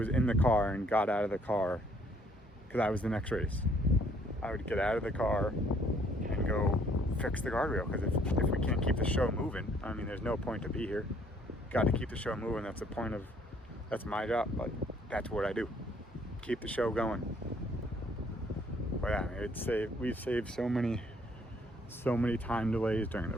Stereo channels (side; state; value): both; normal; correlation 0.63